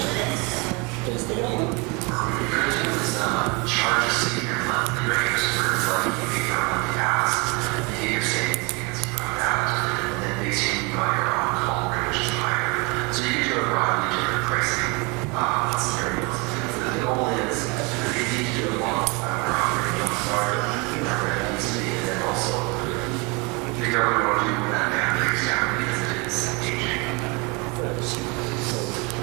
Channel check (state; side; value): quieter; left; 29.2 dB